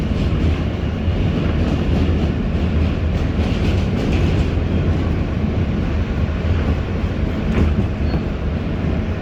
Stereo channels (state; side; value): identical; both; correlation 1.00